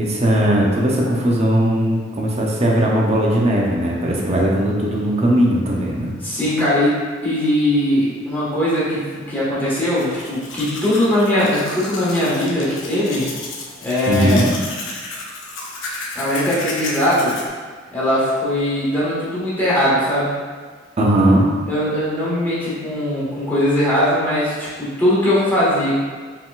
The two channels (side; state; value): both; normal; correlation 0.53